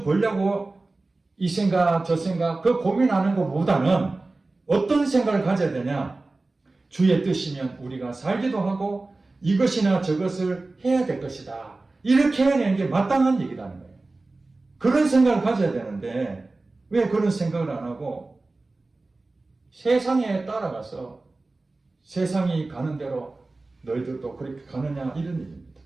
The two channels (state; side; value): quieter; left; 3.3 dB